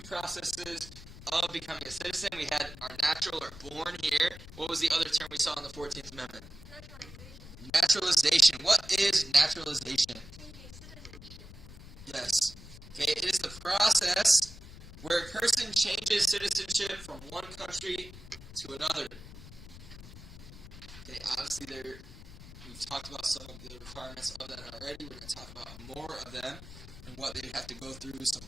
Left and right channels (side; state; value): left; noise; rumble, 15 dB below the sound